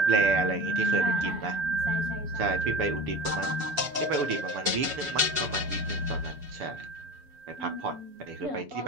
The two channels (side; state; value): left; late; 6.9 ms